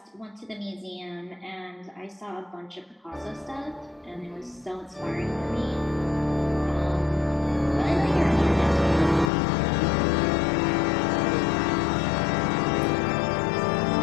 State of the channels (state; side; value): drops out; right; at 9.3 s